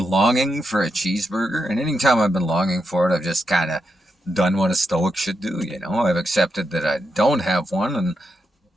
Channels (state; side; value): normal; both; correlation 0.84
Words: longing for a cheeseburger, and anytime I've been longing for it, I've just kind of done what a Stoic should do. I've accepted that I don't have one, and